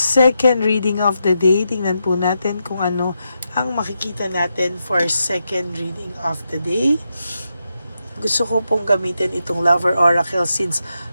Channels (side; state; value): both; inverted; correlation -0.85